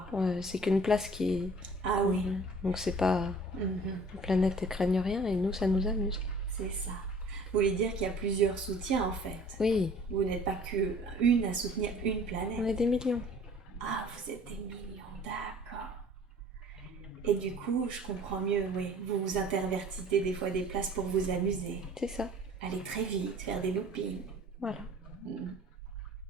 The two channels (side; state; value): both; normal; correlation 0.50